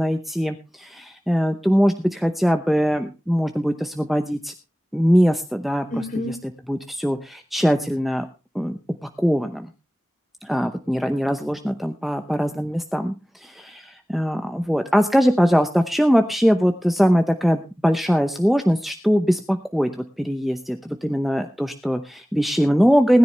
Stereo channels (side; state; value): both; normal; correlation 0.97